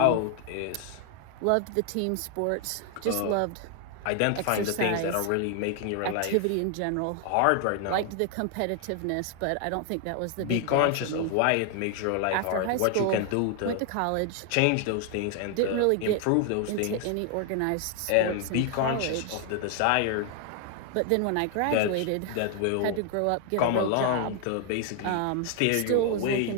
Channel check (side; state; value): both; different; correlation 0.00